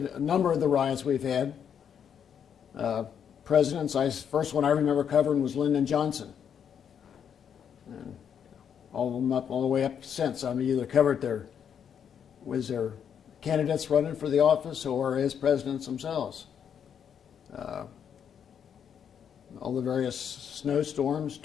number of the riots we've had. Presidents, first one I remember covering was Lyndon Johnson. And all of them all the way up since. Either covered their candidates running for the office or as presidents themselves. All the various snowstorms,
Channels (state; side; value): quieter; right; 8.1 dB